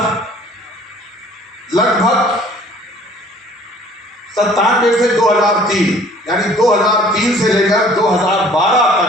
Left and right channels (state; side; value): normal; both; correlation 0.53